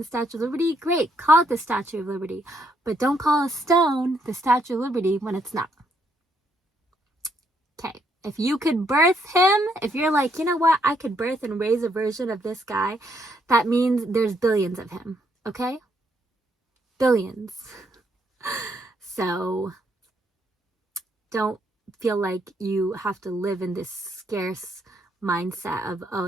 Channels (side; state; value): both; normal; correlation 0.74